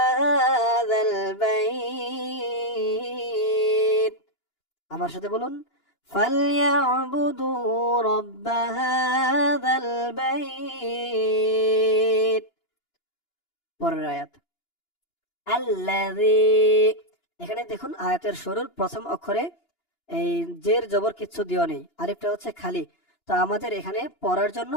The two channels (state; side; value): late; right; 2.9 ms